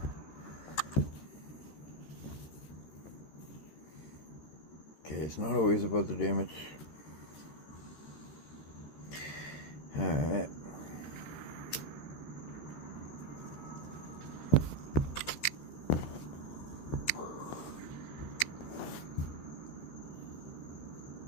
Okay, it's not always about the damage. Alright.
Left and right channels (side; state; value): right; late; 13 ms